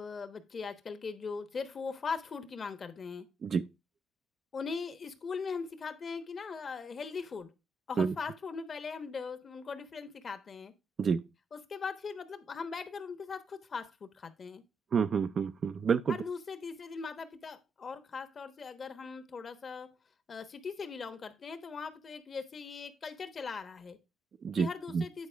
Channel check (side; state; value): both; normal; correlation 0.80